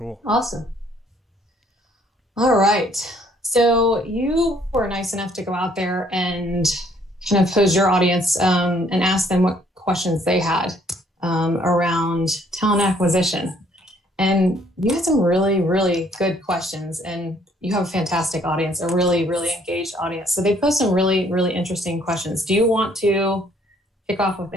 Awesome. All right. So you were nice enough to go out there and kind of pose your audience and ask them what questions they had around talent acquisition. And you had some really, really good questions, and you have a fantastic audience, a really, really engaged audience. So they posed some really, really interesting questions. Do you want to kick off with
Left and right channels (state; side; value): normal; both; correlation 0.64